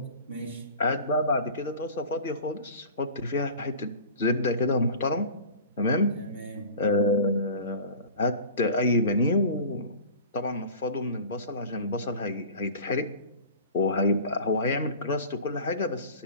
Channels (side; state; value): both; inverted; correlation -0.38